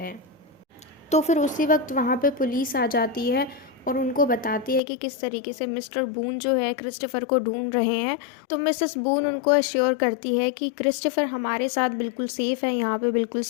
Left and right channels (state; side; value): drops out; right; at 4.8 s